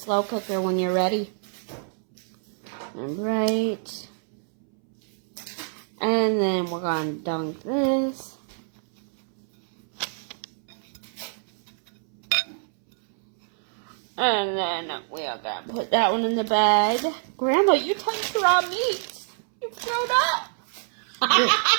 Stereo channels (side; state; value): left; silent; 61 dB below the other